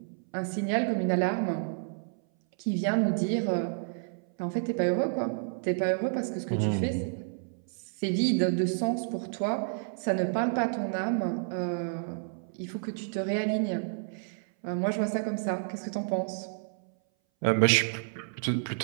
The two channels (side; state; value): left; silent; 58 dB below the other